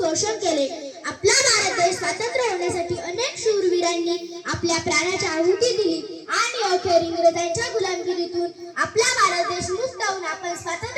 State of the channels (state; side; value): identical; both; correlation 1.00